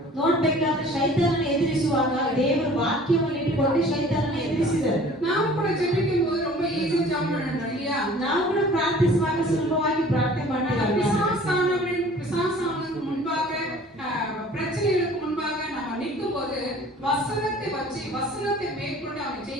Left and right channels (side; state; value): both; normal; correlation 0.48